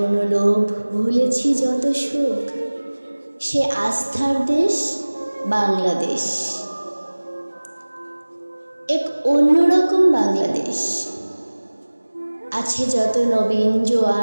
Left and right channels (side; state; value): both; inverted; correlation -1.00